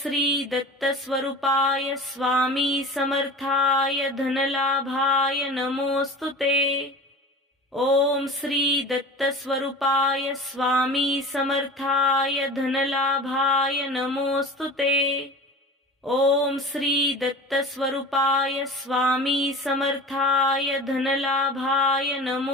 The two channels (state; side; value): normal; both; correlation 0.36